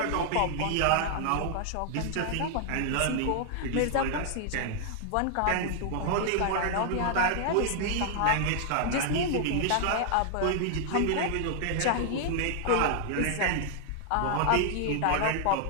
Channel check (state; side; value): different; both; correlation 0.00